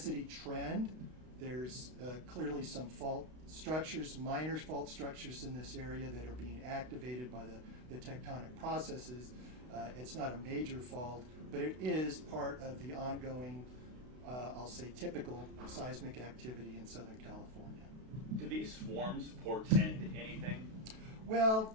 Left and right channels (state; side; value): late; left; 32 ms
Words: trend. There's clearly some fault structures, minor fault structures in this area that are being activated by the tectonic processes. It's not a major fault, but it is part of the ongoing, I'll say, typical seismic activity in Southern California. Do these swarms portend anything? Well,